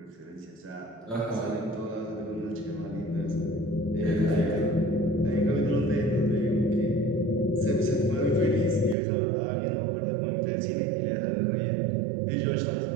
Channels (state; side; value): drops out; left; at 9.0 s